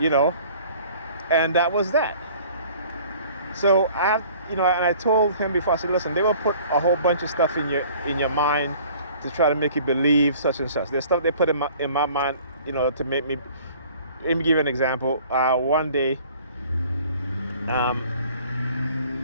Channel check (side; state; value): both; inverted; correlation -0.51